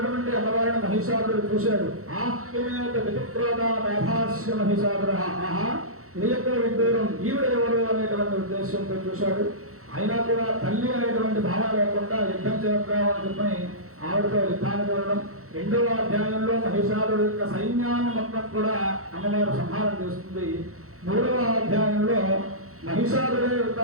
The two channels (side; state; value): left; late; 0.64 ms